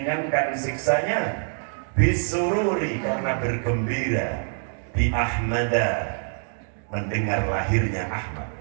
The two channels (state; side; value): silent; left; 62 dB below the other